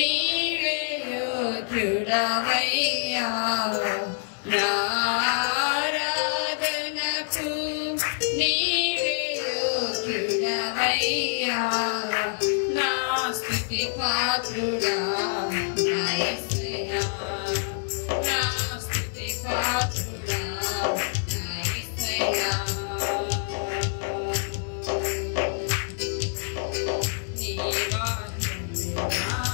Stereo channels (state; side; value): silent; right; digital silence